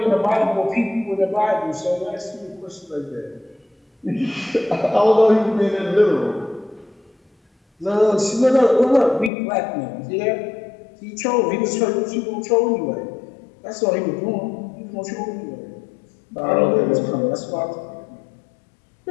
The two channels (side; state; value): right; drops out; at 9.3 s